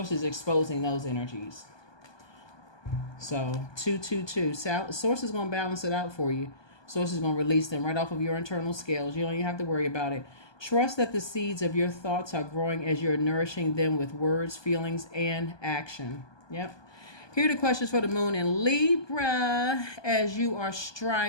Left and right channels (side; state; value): right; late; 1.2 ms